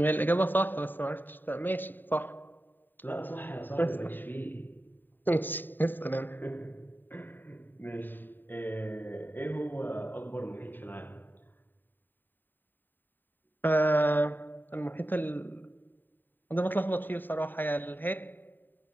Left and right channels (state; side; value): late; right; 0.091 ms